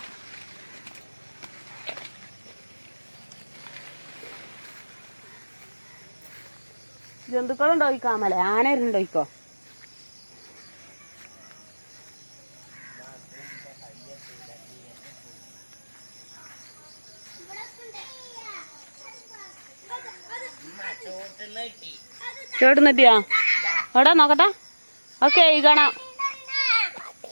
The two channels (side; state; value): both; inverted; correlation -1.00